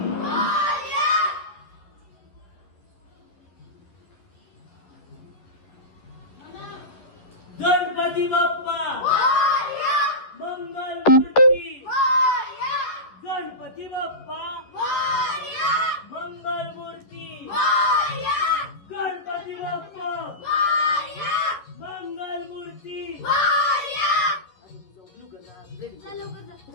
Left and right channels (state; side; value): late; right; 11 ms